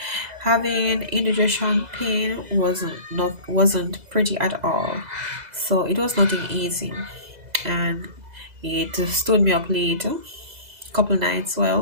having indigestion pain wasn't pretty at all. So it was nothing easy, and it stood me up late, couple nights.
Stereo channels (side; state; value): left; late; 2.0 ms